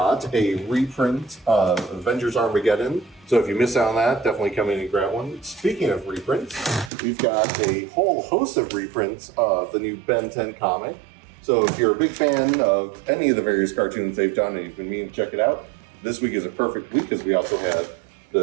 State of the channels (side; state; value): left; drops out; at 6.9 s